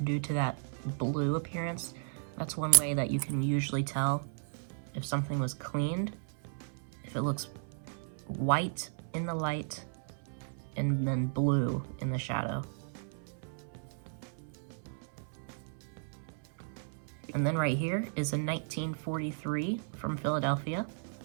due to that blue appearance. That's one way that you can usually tell if something was cleaned, if it looks white in the light and then blue in the shadow. And then right here is a 1943 from Philadelphia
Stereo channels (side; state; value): left; silent; 55 dB below the other